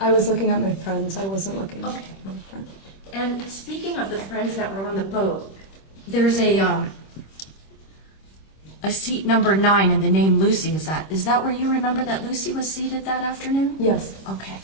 I was looking at my friends. I wasn't looking at Okay. my friends. And speaking of the friends that were on the boat, there's a a seat number 9 and the name Lucy. Is that where you remember that Lucy was seated that afternoon? Yes. Okay.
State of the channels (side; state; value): right; late; 26 ms